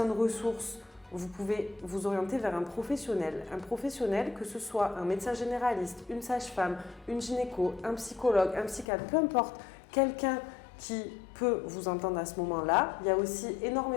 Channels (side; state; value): right; drops out; at 8.8 s